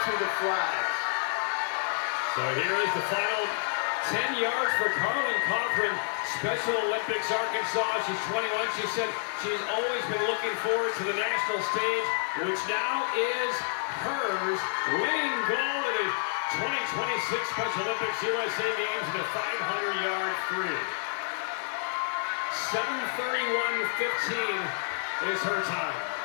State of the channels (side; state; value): right; silent; digital silence